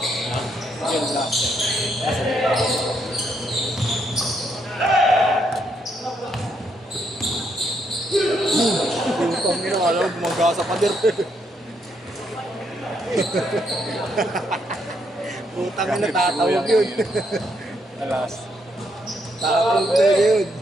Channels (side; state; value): both; normal; correlation 0.75